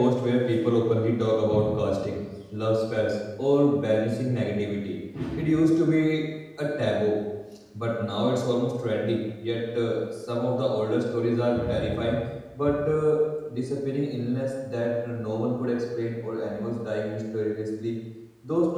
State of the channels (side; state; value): both; identical; correlation 1.00